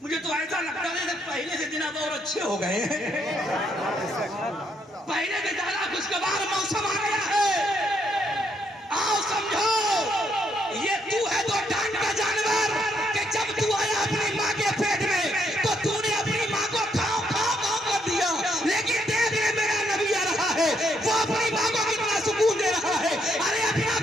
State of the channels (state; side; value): normal; both; correlation 0.75